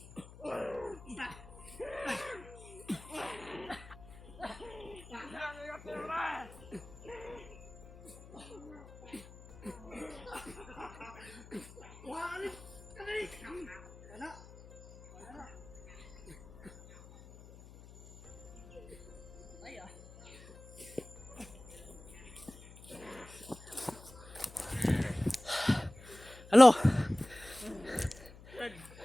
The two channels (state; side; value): noise; left; hum, 19 dB below the sound